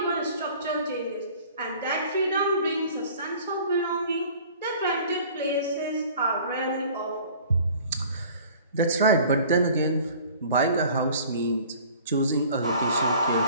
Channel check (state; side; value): inverted; both; correlation -0.48